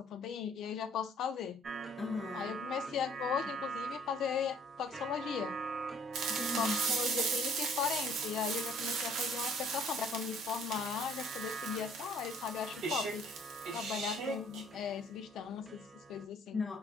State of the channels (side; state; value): both; normal; correlation 0.59